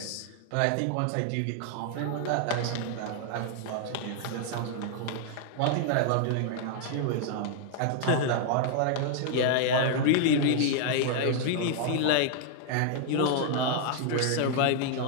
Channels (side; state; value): both; different; correlation -0.01